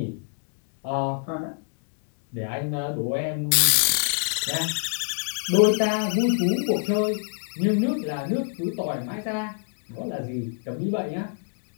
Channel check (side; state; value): right; silent; digital silence